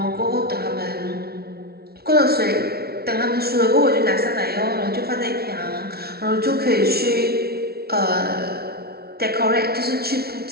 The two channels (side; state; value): left; late; 0.45 ms